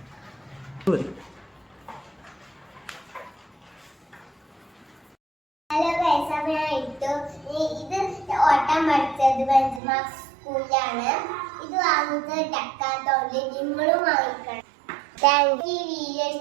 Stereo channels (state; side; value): drops out; left; at 9.8 s